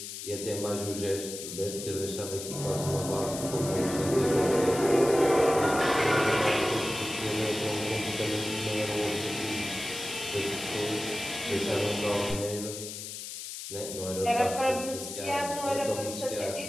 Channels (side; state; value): left; noise; hiss, 8 dB below the sound